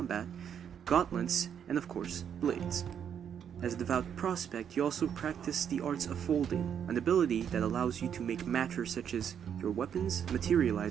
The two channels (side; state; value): left; quieter; 8.4 dB